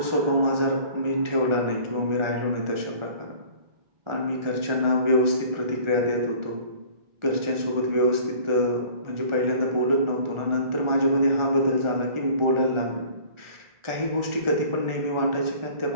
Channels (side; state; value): left; late; 1.4 ms